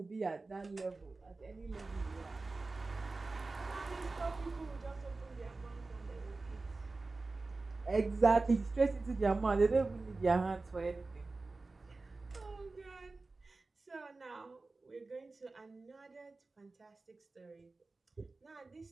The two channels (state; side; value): quieter; left; 3.5 dB